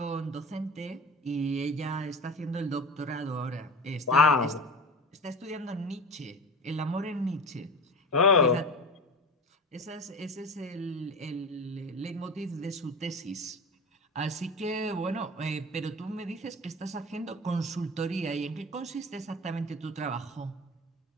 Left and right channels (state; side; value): normal; both; correlation 0.31